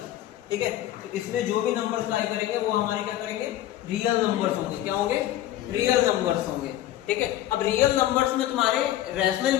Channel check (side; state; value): right; quieter; 13.5 dB